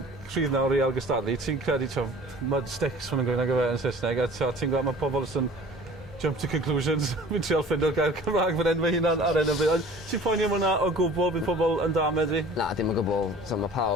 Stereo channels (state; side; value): normal; both; correlation 0.46